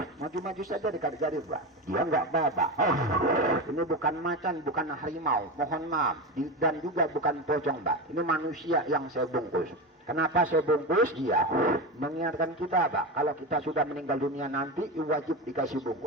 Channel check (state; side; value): normal; both; correlation 0.20